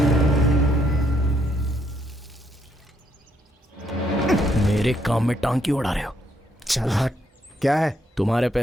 मेरे काम में टांग क्यों उड़ा रहे हो? चल हट। क्या है? तुम्हारे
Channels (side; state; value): both; normal; correlation 0.73